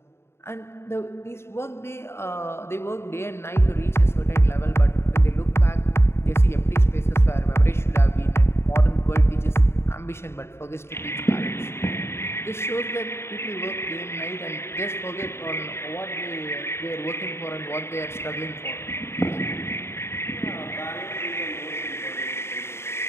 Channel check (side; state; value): right; late; 0.12 ms